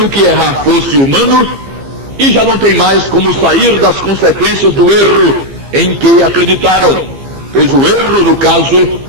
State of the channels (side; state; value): left; late; 15 ms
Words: que errar fosse humano, e já não tem mais como sair das consequências do erro em que acreditaram. Pois o erro, no caso,